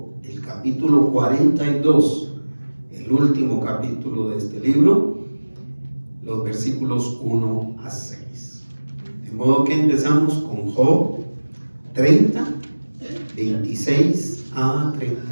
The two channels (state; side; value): inverted; both; correlation -1.00